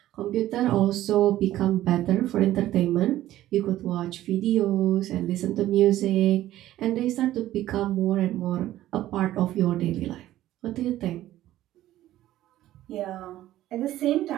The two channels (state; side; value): quieter; left; 14.1 dB